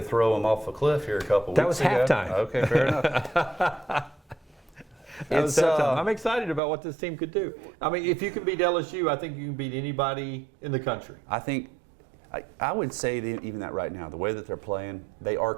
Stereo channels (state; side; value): drops out; left; at 6.6 s